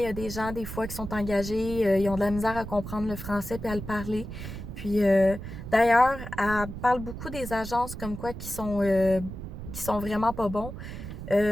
y a des gens, des fois, qui sont engagés, ils ont de la misère à comprendre le français puis à le parler. Puis, d'ailleurs, elle parle beaucoup des agences comme quoi qui sont vraiment pas bons.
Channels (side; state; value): right; noise; rumble, 9 dB below the sound